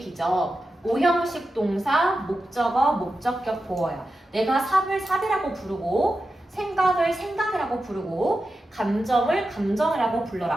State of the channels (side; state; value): both; normal; correlation 0.91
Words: B죠. 오형식 동사, 목적어, 목적격 보어요. 내가 삽을 삽이라고 부르고 생각을 생각이라고 부르고 감정을 감정이라고